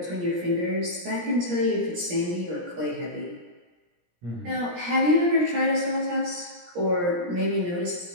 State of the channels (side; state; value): left; late; 17 ms